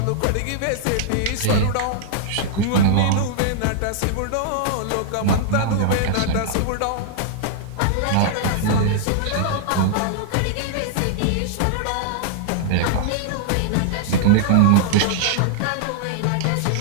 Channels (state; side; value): different; both; correlation -0.01